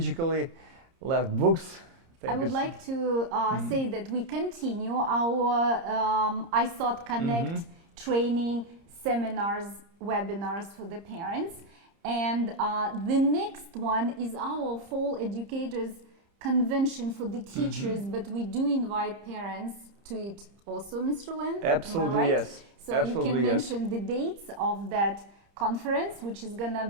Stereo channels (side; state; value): left; late; 30 ms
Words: left books. I would like to say that we continue our iSOT Connect training seminars, webinars for the parents. And the next one is our Fall Educators Convention for the teachers, but we do invite parents to it also, Mr. Len? Absolutely, am I right? yes. So absolutely, you can yes. mention the dates of that conference, which is going to